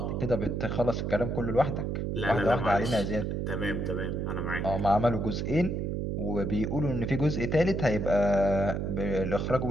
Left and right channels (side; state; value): right; noise; hum, 1 dB below the sound